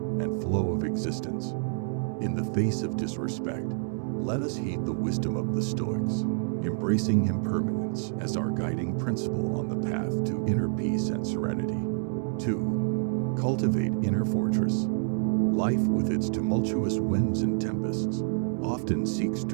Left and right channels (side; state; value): left; silent; digital silence